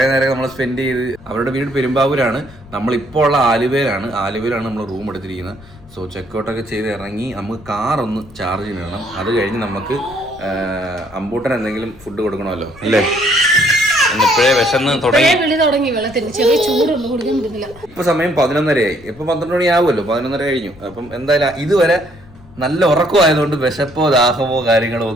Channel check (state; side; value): noise; left; rumble, 22 dB below the sound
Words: നേരം നമ്മൾ സ്പെൻഡ് ചെയ്ത്. അവരുടെ വീട് പെരുമ്പാവൂരാണ്, നമ്മളിപ്പോൾ ഉള്ള ആലുവയിലാണ് നമ്മൾ റൂം എടുത്തിരിക്കുന്നത്. സോ ചെക്കൗട്ടൊക്കെ ചെയ്ത് ഇറങ്ങി നമുക്ക് കാറൊന്ന് ചാർജ് ചെയ്യണം. അത് കഴിഞ്ഞ് നമുക്ക് അമ്പൂട്ടൻ എന്തെങ്കിലും ഫുഡ് കൊടുക്കണമല്ലോ അല്ലേ. ഇപ്പോഴേ വിശന്ന് തുടങ്ങി. ഇപ്പൊ സമയം 11:30 ഇപ്പൊ 12 മണി ആവുമല്ലോ, 11:30 കഴിഞ്ഞു. അപ്പം എന്തായാലും ഇതുവരെ നല്ല ഉറക്കമായതുകൊണ്ട് വിശപ്പോ ദാഹമോ കാര്യങ്ങളോ